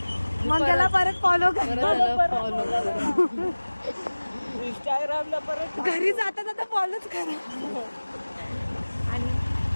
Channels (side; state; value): both; inverted; correlation -1.00